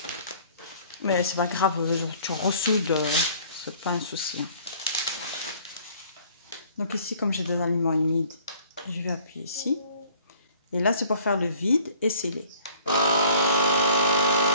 Mais c'est pas grave, tu ressoudes, c'est pas un souci. Donc ici, comme j'ai des aliments humides, je vais appuyer ici. Et là, c'est pour faire le vide et sceller.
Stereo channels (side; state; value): both; inverted; correlation -0.54